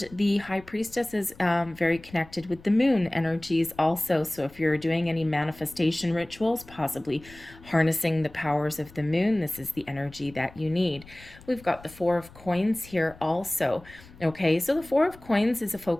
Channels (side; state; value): left; noise; rumble, 22 dB below the sound